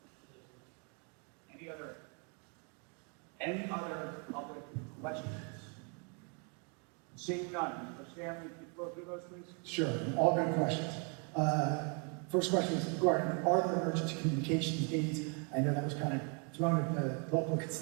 Any other public questions? Seeing none, Mr. Stanley, can you go through those, please? Sure, all good questions. First question is regarding, are there emergency communications needs? I know that was kind of thrown at the local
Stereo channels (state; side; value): quieter; left; 37.1 dB